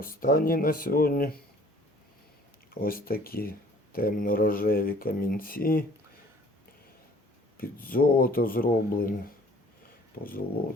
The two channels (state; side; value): normal; both; correlation 0.53